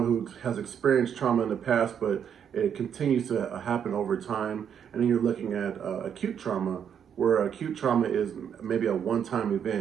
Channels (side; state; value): left; quieter; 8.2 dB